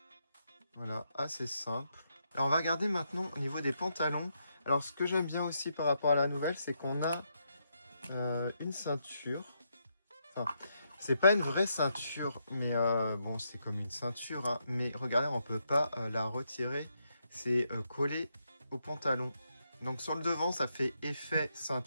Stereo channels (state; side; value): inverted; both; correlation -0.80